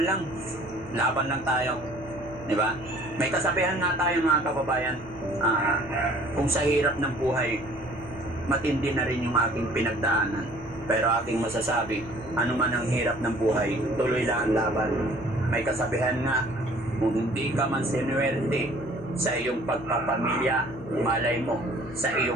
lang. Laban lang tayo. Di ba? May kasabihan nga tayo mga kababayan, kung sa hirap ng buhay, matindi na rin yung aking pinagdaanan. Pero aking masasabi, ano man ang hirap ng buhay, tuloy lang ang laban. May kasabihan nga, kung hindi ka man sinuwerte sa iyong pagpapamilya, malay mo, sa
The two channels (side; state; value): right; noise; hum, 21 dB below the sound